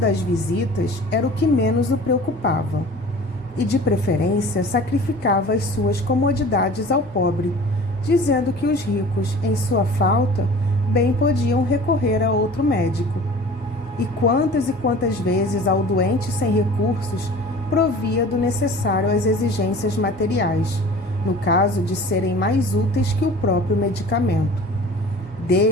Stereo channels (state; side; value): normal; both; correlation 0.43